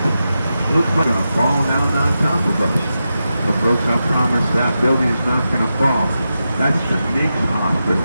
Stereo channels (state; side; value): inverted; both; correlation -0.90